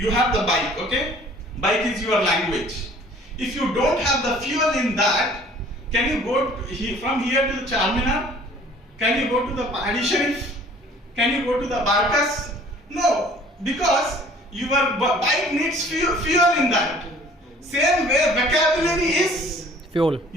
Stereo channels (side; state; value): both; normal; correlation 0.52